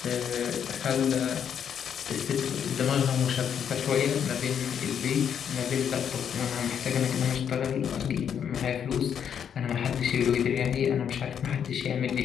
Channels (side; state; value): right; quieter; 8.3 dB